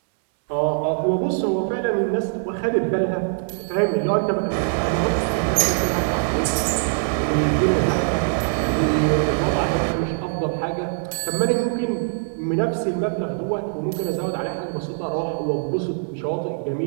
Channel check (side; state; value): left; silent; 63 dB below the other